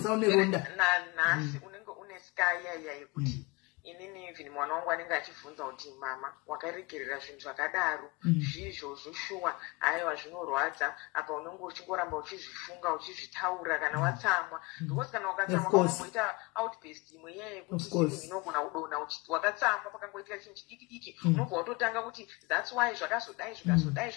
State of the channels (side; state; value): right; quieter; 25.6 dB